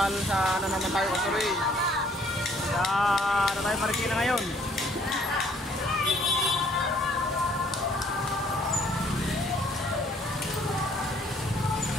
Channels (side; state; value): both; normal; correlation 0.62